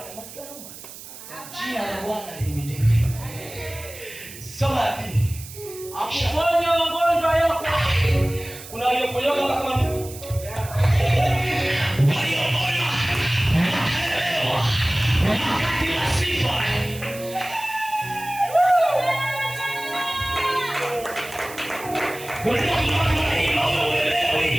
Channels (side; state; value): right; noise; hiss, 15 dB below the sound